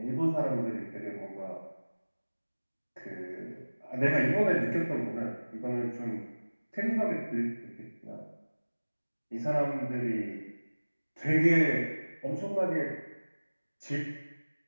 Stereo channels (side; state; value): both; inverted; correlation -1.00